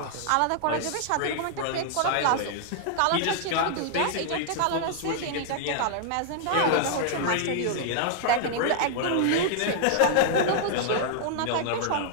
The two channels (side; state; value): both; different; correlation -0.01